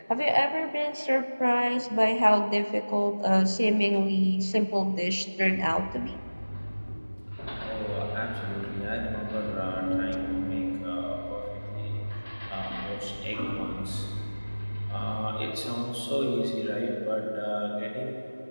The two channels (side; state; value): both; inverted; correlation -1.00